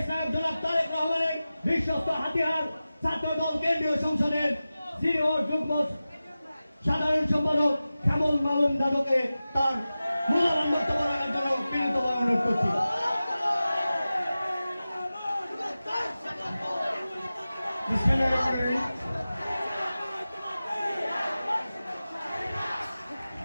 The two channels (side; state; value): both; inverted; correlation -0.95